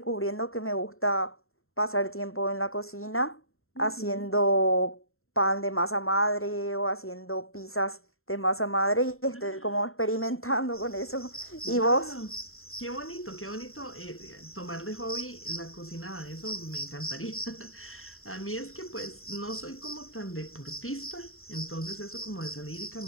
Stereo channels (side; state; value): right; late; 0.62 ms